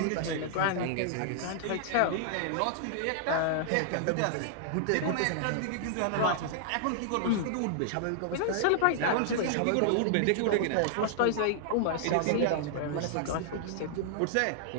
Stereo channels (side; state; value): both; different; correlation -0.01